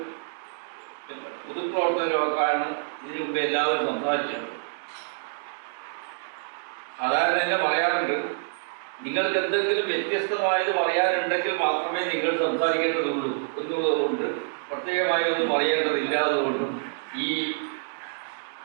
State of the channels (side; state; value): left; silent; digital silence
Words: പൊതുപ്രവർത്തകരുമൊക്കെയാണ് ഇതിനു മുമ്പ് എല്ലാവരും സംസാരിച്ചത്. സാധാരണ തന്നെ പറയാറുണ്ട്, നിങ്ങൾക്ക് എന്തെങ്കിലും വ്യത്യസ്തമായത് പറയാനുണ്ടെങ്കിൽ മാത്രമേ നിങ്ങൾ സംസാരിക്കേണ്ടതുള്ളൂ എന്നുള്ളതുകൊണ്ട് പ്രത്യേകമായി ഒന്നും പറയേണ്ടതില്ലാത്തതുകൊണ്ടും ഈ